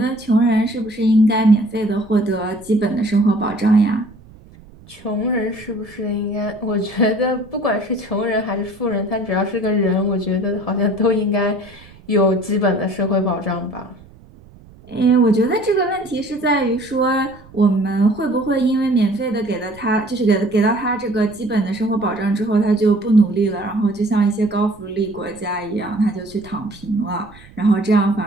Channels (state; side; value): noise; right; rumble, 23 dB below the sound